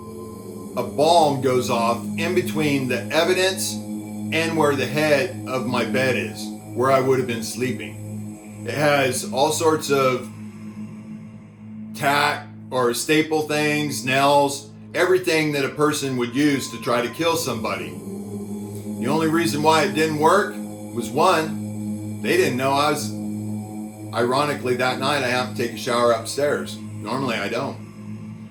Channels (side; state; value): both; identical; correlation 1.00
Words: a bomb goes off in between the evidence and where the head of my bed is, where I would have been sleeping. It has all sorts of tack or staple things, nails, everything that a person would use to try to kill somebody. The only reason why it didn't work was, one, they didn't know I was, ironically that night I have to take a shower upstairs. Normally I don't.